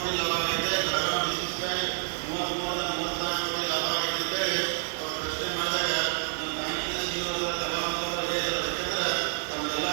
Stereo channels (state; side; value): silent; left; digital silence